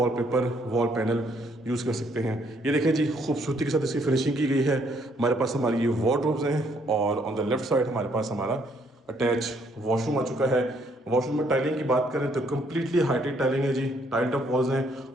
वॉल पैनल यूज़ कर सकते हैं। ये देखें जी खूबसूरती के साथ इसकी फिनिशिंग की गई है। हमारे पास हमारी ये वार्डरोब्स हैं और ऑन द लेफ्ट साइड हमारे पास हमारा अटैच वॉशरूम आ चुका है। वॉशरूम में टाइलिंग की बात करें तो कम्प्लीटली हाइटेड टाइलिंग है जी, टाइल्ड अप वॉल्स हैं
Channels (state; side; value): normal; both; correlation 0.68